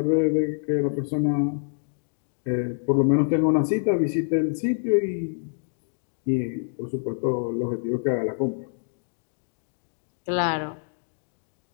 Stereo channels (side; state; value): right; silent; digital silence